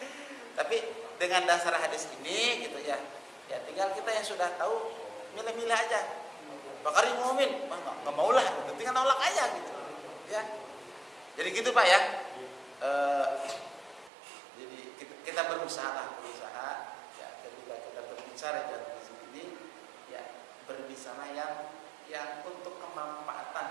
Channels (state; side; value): drops out; left; at 14.1 s